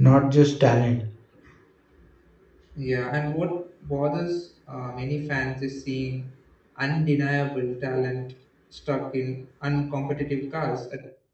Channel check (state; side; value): identical; both; correlation 1.00